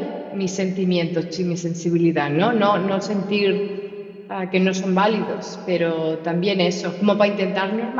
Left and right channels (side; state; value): both; identical; correlation 1.00